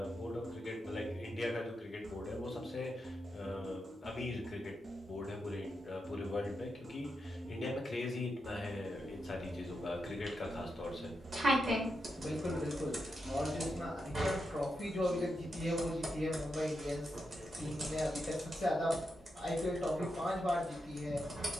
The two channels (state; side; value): normal; both; correlation 0.86